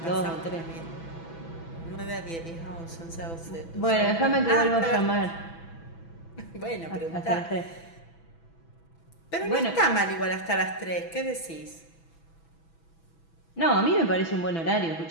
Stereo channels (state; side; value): late; right; 6.0 ms